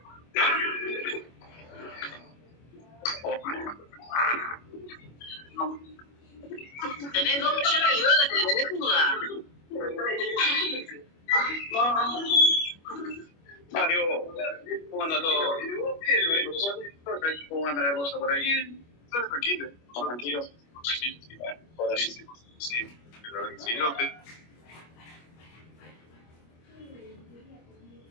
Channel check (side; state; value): right; late; 25 ms